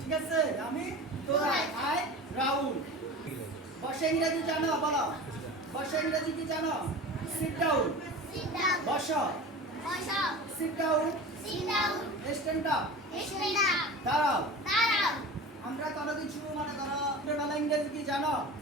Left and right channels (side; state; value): both; normal; correlation 0.34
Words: ঠিক আছে আমি দৌড়াই I run. বসে ইংরেজি জানো? বলো বসে ইংরেজি কি জানো? sit down. বসো sit down. stand up. দাঁড়াও। আমরা কোনো কিছু মনে করো বলা ইংরেজি কি জানো?